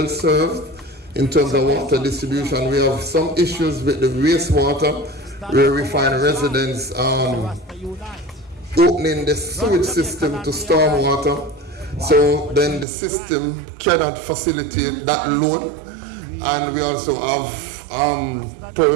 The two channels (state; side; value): drops out; left; at 12.9 s